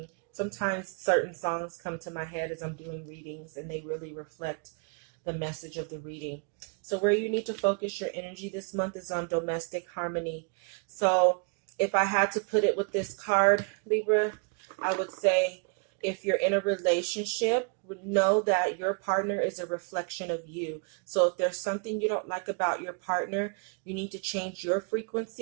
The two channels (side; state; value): left; quieter; 37.8 dB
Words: Sometimes certain songs come to my head as I'm doing readings and they really reflect the message of the reading. So where you need to focus your energy this month is on domestic harmony. So if I had to put it with this card, Libra, I would say if you're in a relationship, know that your partner is a reflection of you. So if there's something you don't like about your partner, you need to change your